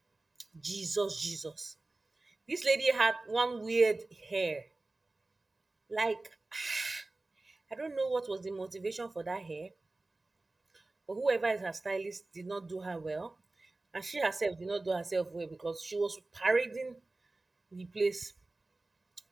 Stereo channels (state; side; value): quieter; left; 3.1 dB